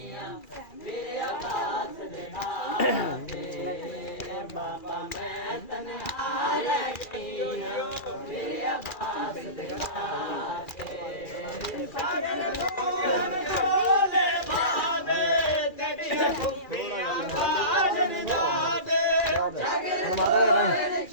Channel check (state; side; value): late; right; 2.4 ms